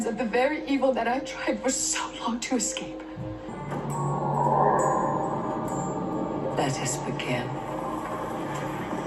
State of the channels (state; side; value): identical; both; correlation 1.00